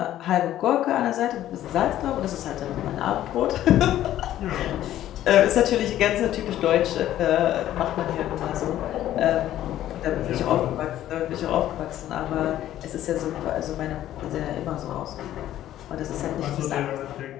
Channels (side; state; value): right; quieter; 12.8 dB